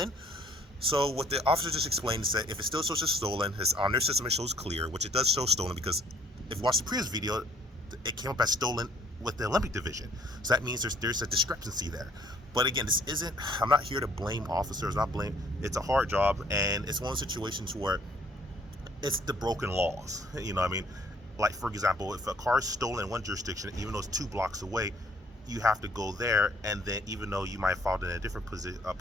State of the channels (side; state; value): both; normal; correlation 0.61